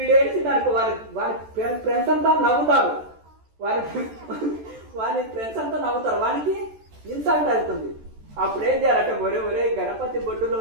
దానికి వారి ఫ్రెండ్స్ అంతా నవ్వుతారు, వారి ఫ్రెండ్స్ అంతా నవ్వుతారు, వానికి ఇన్సల్ట్ అవుతుంది. అప్పుడు ఏం చేయాలంటే, ఒరే గణపతి బొడ్డులో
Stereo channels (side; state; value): left; late; 14 ms